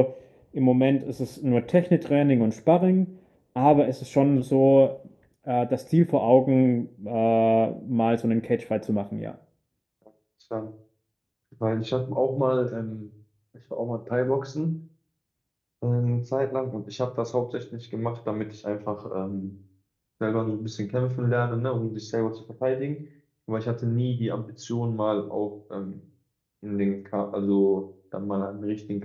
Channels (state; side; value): identical; both; correlation 1.00